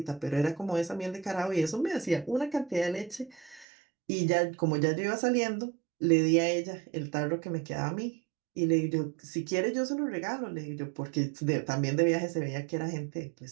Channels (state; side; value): drops out; left; at 3.7 s